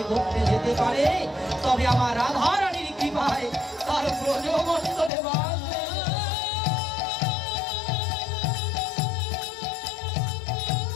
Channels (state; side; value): drops out; right; at 5.1 s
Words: করতে যেতে পারে, তবে আমার রাধারানীর কৃপায় তার ব্রজমণ্ডলে বাস।